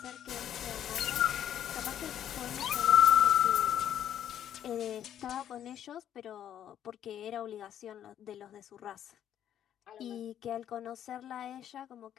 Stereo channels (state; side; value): quieter; right; 10.3 dB